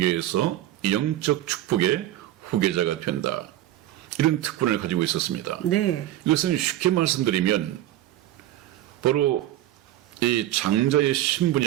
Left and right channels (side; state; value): left; quieter; 13.8 dB